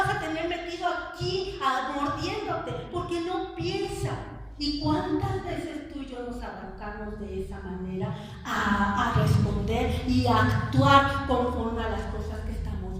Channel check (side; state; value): both; identical; correlation 1.00